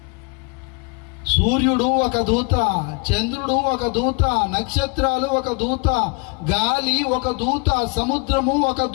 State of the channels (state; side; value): quieter; right; 31.9 dB